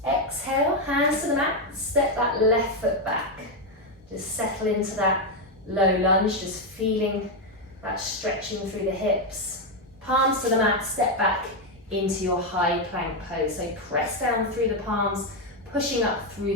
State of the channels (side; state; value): both; normal; correlation 0.05